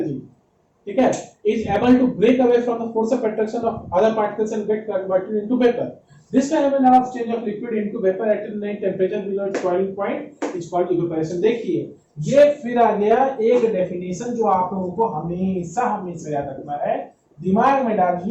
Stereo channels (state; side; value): identical; both; correlation 1.00